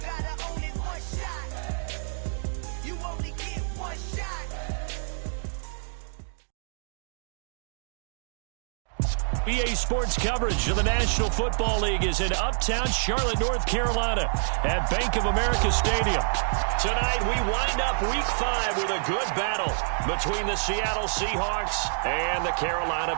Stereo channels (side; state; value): left; silent; digital silence